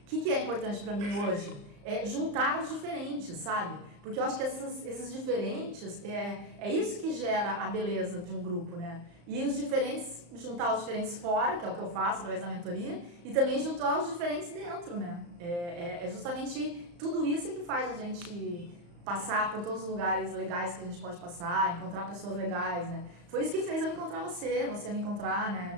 que é importante pra mim hoje? É juntar os diferentes, sabe? Porque eu acho que esses diferentes, é isso que gera a beleza de um grupo, né? E os diferentes, juntar os diferentes fora, que é o que eu faço através da mentoria, e também juntar os diferentes dentro, né? É justamente tudo isso que faz a gente passar por todos os lugares legais que a gente pode passar, encontrar pessoas legais, né? Foi isso que fez eu encontrar você me encontrar,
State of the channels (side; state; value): left; late; 34 ms